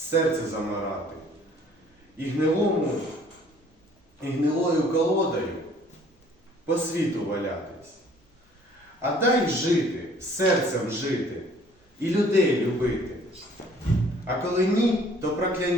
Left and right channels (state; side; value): normal; both; correlation 0.56